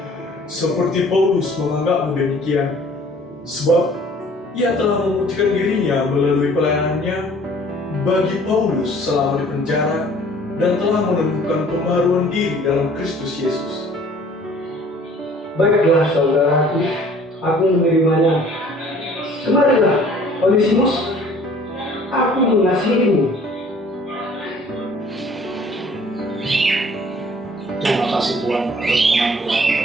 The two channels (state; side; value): normal; both; correlation 0.54